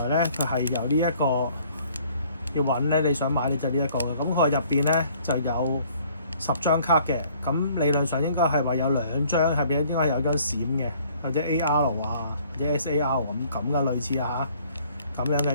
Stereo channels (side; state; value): both; inverted; correlation -0.59